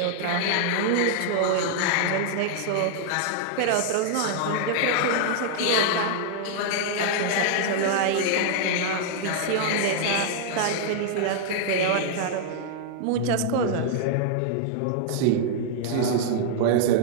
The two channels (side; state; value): both; different; correlation -0.01